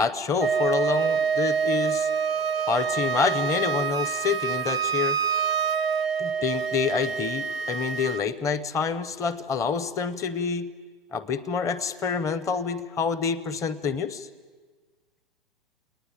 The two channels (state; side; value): normal; both; correlation 0.37